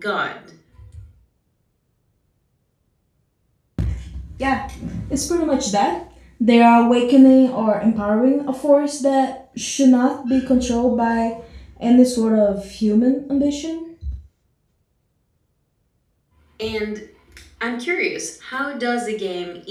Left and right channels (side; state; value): both; identical; correlation 1.00